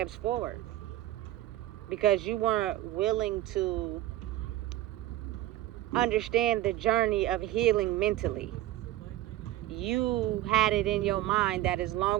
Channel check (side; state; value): left; quieter; 14.8 dB